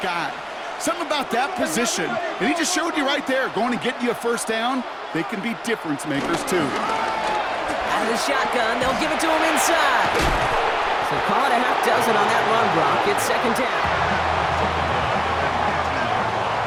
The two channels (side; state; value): both; identical; correlation 1.00